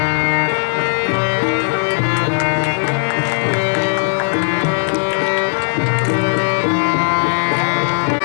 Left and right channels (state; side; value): silent; right; digital silence